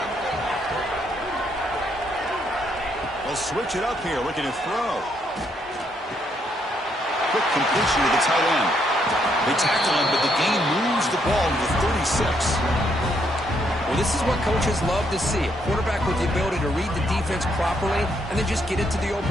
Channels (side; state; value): both; normal; correlation 0.74